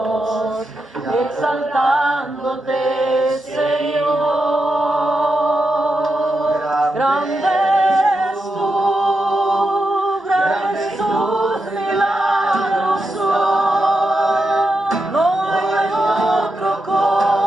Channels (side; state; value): both; normal; correlation 0.87